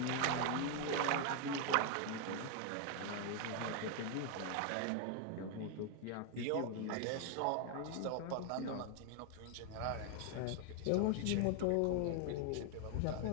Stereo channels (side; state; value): both; different; correlation 0.00